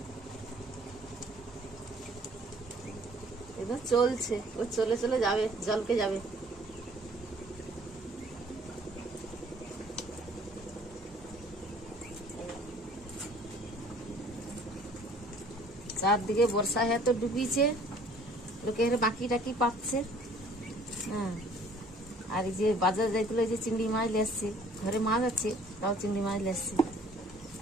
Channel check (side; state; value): both; normal; correlation 0.55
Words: একদম চলছে, ও চলে চলে যাবে, জলকে যাবে। চারদিকে বর্ষা হ্যাঁ তো ডুবিছে, লোকের বাকি টাকি পাচ্ছে। হ্যাঁ, আর এই যে বাজার যাইছিল, এই যে চিংড়ি মাছ লেসছে, ঘরে মাছ আছে, তাও চিংড়ি মাছ লেসছে।